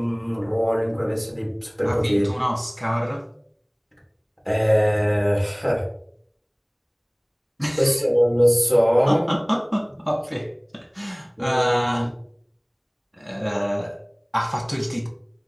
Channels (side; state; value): both; identical; correlation 1.00